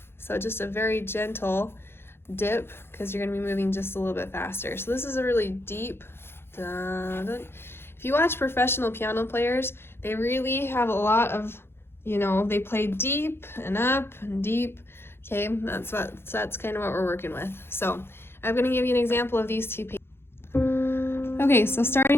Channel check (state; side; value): late; right; 0.11 ms